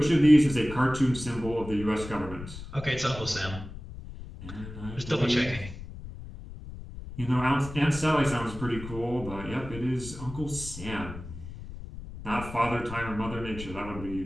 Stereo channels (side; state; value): left; noise; rumble, 12 dB below the sound